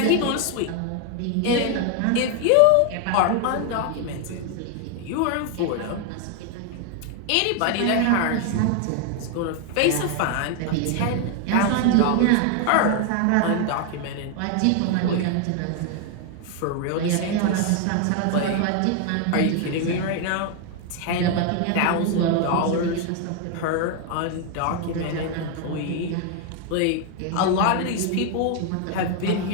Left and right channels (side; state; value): both; different; correlation 0.00